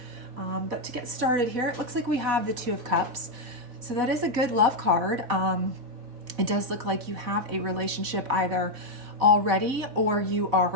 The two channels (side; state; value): left; late; 4.0 ms